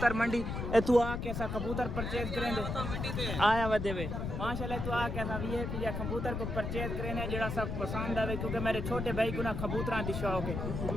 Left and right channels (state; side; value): noise; left; rumble, 3 dB below the sound